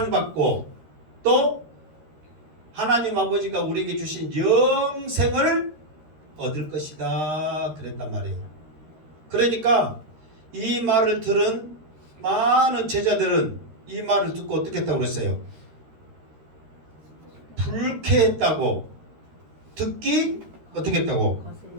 또 하나님 아버지가 우리에게 주신 영생을 얻을 것이다 그랬단 말이에요. 그러니까 이 말을 들은 많은 제자들은 이 말을 듣고 어떻게 했다고 그랬어요? 불쾌했다고, 듣기 어떻게 했다고?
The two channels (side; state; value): left; late; 13 ms